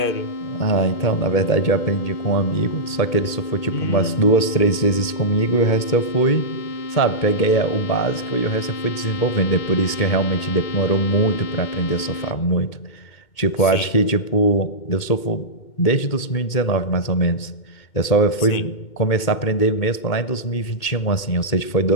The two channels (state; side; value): late; right; 2.2 ms